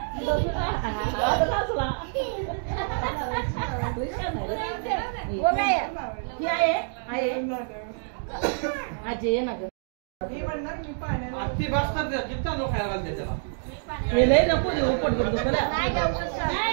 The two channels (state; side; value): silent; left; digital silence